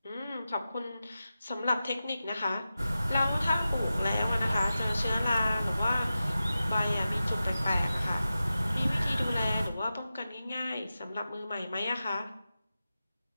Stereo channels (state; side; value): inverted; both; correlation -0.93